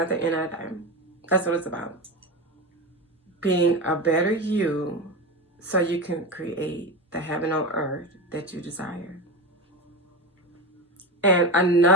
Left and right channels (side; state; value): both; normal; correlation 0.22